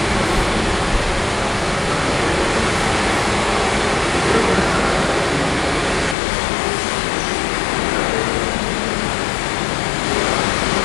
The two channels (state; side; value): drops out; right; at 6.2 s